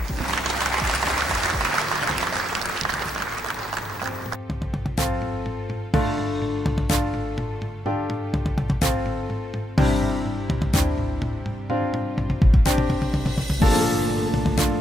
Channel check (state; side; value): normal; both; correlation 0.82